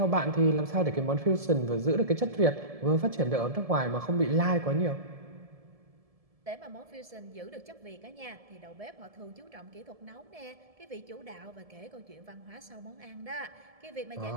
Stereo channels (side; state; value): left; late; 1.7 ms